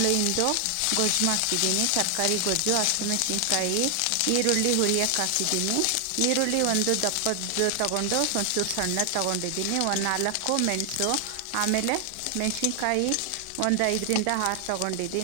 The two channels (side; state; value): both; different; correlation 0.00